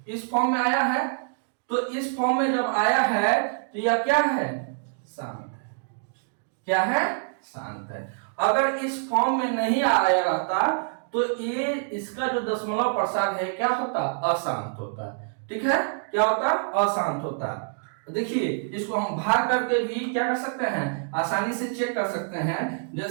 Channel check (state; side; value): silent; left; digital silence